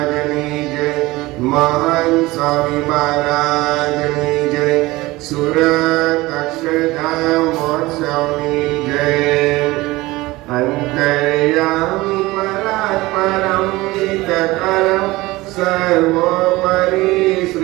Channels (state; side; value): quieter; left; 20.0 dB